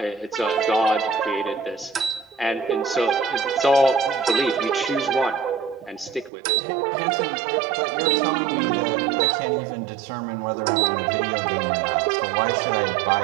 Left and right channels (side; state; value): left; drops out; at 6.3 s